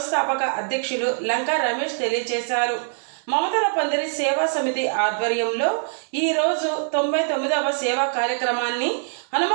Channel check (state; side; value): silent; left; digital silence